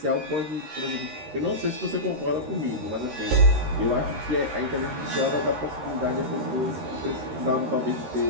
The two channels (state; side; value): late; left; 13 ms